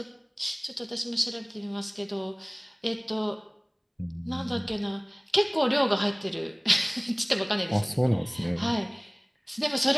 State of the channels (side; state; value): both; identical; correlation 1.00